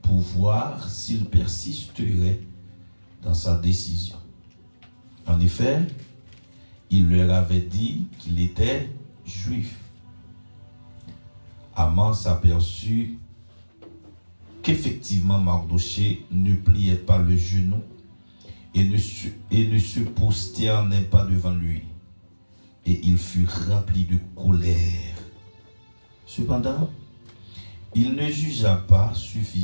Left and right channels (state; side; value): inverted; both; correlation -1.00